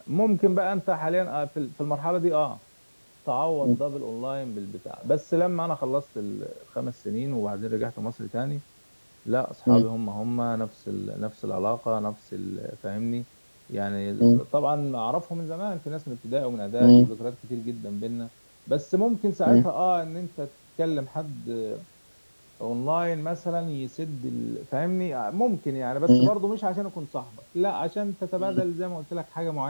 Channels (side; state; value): both; inverted; correlation -1.00